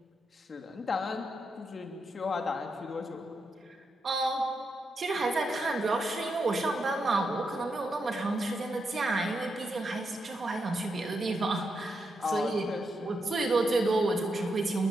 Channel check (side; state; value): both; normal; correlation 0.83